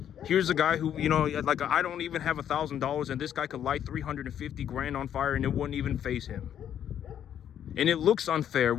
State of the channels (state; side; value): quieter; right; 9.8 dB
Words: Here's a guy who, like, I don't even have $1,000 and this guy could light 350 grand on fire and it wouldn't even faze him. And it looks unfair.